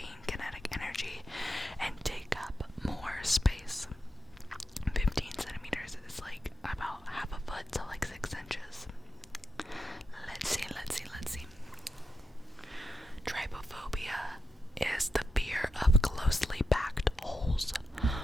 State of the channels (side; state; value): both; normal; correlation 0.86